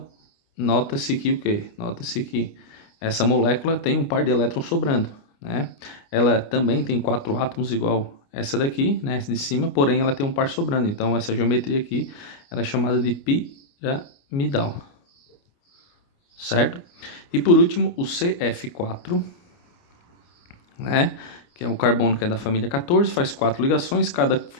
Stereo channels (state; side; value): late; right; 29 ms